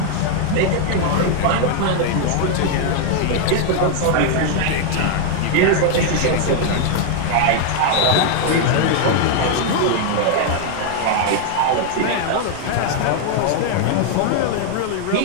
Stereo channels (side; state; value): both; different; correlation 0.00